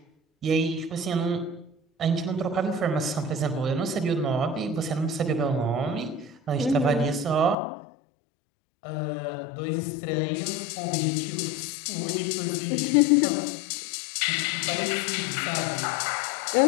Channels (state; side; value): drops out; right; at 7.6 s